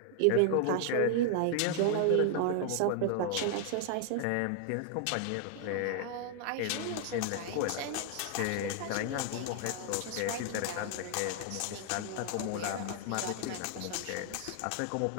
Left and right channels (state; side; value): different; both; correlation 0.00